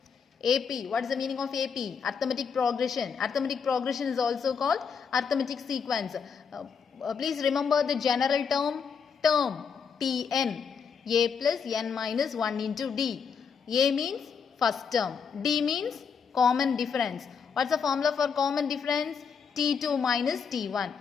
AP, what is the meaning of AP? Arithmetic progression. Arithmetic progression is also called arithmetic sequence. Please remember the general term Tn. A plus n minus 1 into d. A means first term. D means common difference. What's the formula for common difference? T2 minus T1.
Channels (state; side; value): quieter; right; 6.4 dB